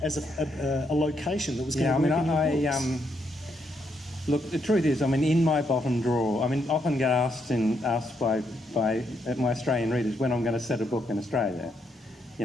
as a location that was going Yeah, to work in your books. Look, the truth is, I mean, in my bottom drawer, I mean, often get asked by my Australian readers when I'm going to set a book in Australia. You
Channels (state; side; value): normal; both; correlation 0.77